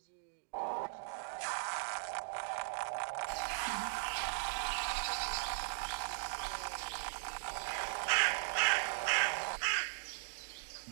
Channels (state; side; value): silent; left; digital silence